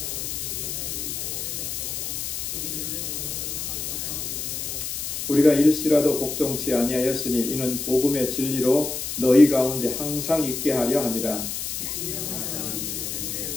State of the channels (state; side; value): noise; left; hiss, 4 dB below the sound